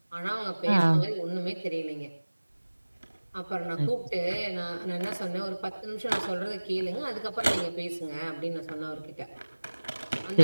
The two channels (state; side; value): inverted; both; correlation -1.00